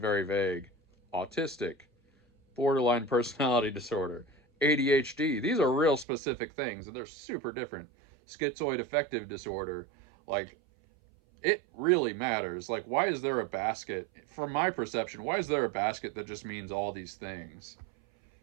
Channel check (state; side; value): drops out; left; at 6.1 s